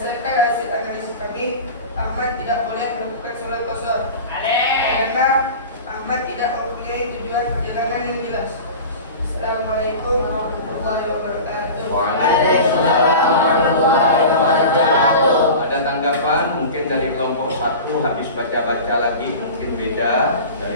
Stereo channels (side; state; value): both; inverted; correlation -0.34